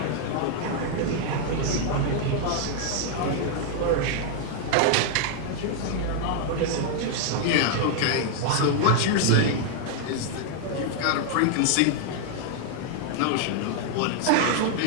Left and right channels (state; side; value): different; both; correlation 0.00